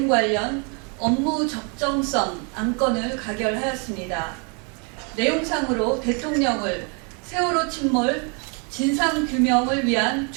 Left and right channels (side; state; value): left; quieter; 36.1 dB